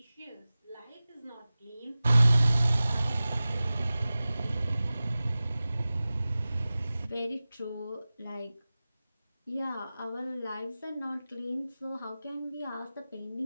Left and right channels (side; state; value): both; inverted; correlation -0.97